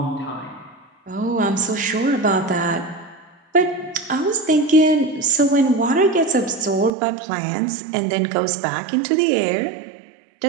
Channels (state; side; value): drops out; left; at 6.9 s